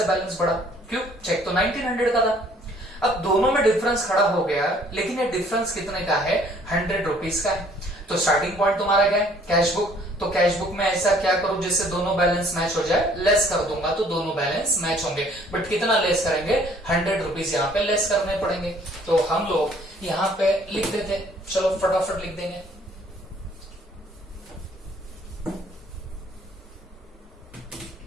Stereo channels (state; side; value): normal; both; correlation 0.59